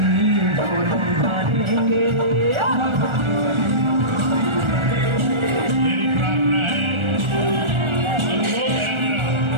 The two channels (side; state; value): left; late; 1.4 ms